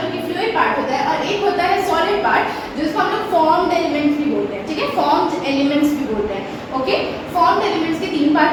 कि फ्लूइड पार्ट होता है, और एक होता है सॉलिड पार्ट जिसको हम लोग फॉर्म्ड एलिमेंट्स भी बोलते हैं, ठीक है, फॉर्म्ड एलिमेंट्स भी बोलते हैं। ओके, फॉर्म्ड एलिमेंट्स के तीन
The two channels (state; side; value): identical; both; correlation 1.00